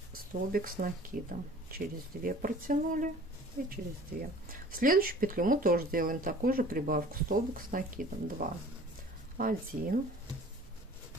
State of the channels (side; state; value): both; normal; correlation 0.47